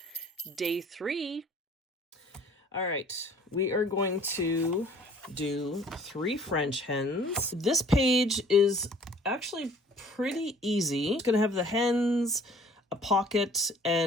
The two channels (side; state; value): both; normal; correlation 0.53